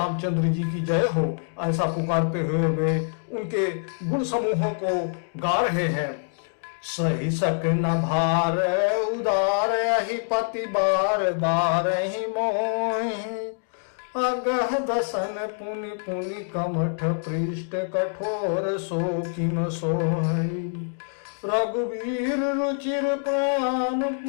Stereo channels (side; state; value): right; silent; digital silence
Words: जी की जय हो, ऐसा पुकारते हुए वे उनके गुण समूहों को गा रहे हैं। सही सक न भार उदार ही पति बार बार ही मोहि, अगह दसन पुनि पुनि कमठ पृष्ठ कठोर सो किम सोहि। रघुवीर रुचिर प्राण